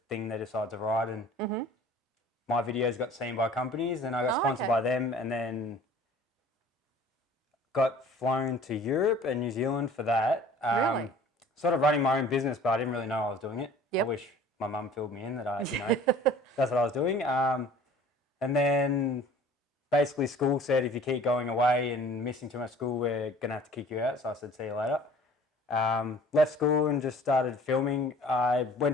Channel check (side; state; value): both; normal; correlation 0.48